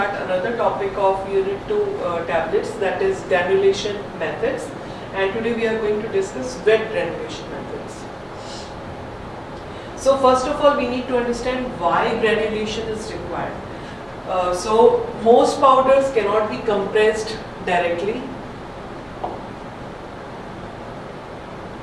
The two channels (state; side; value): identical; both; correlation 1.00